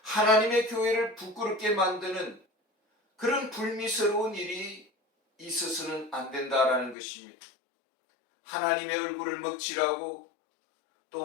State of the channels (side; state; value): right; drops out; at 7.0 s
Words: 하나님의 교회를 부끄럽게 만드는 그런 불미스러운 일이 있어서는 안 된다라는 것입니다. 하나님의 얼굴을 먹칠하고 또